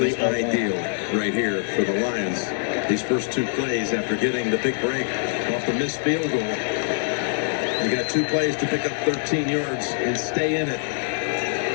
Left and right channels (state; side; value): silent; right; digital silence